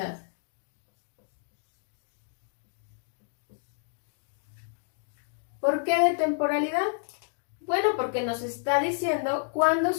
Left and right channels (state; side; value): silent; right; digital silence